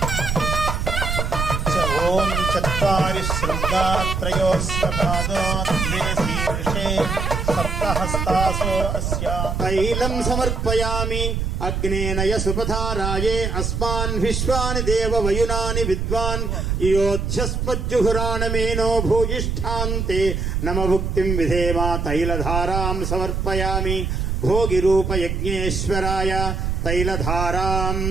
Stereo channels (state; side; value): noise; right; rumble, 1 dB below the sound